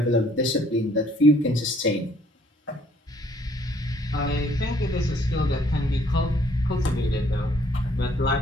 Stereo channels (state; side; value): normal; both; correlation 0.63